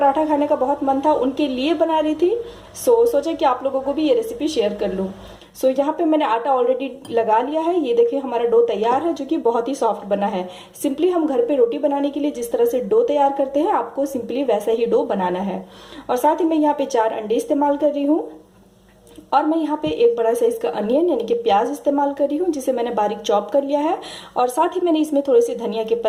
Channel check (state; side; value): identical; both; correlation 1.00